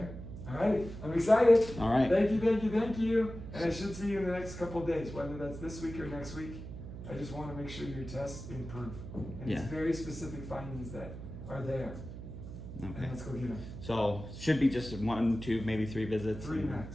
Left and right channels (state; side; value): noise; right; hum, 10 dB below the sound